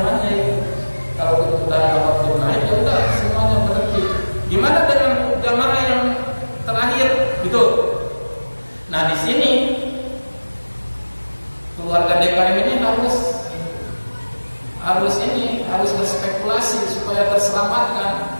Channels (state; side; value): inverted; both; correlation -1.00